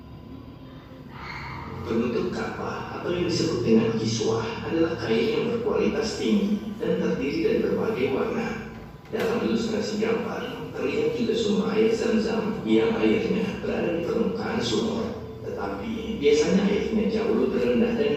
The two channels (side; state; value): both; identical; correlation 1.00